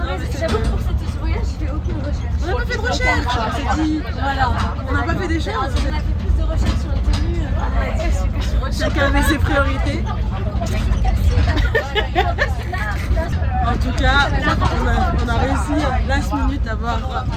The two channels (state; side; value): identical; both; correlation 1.00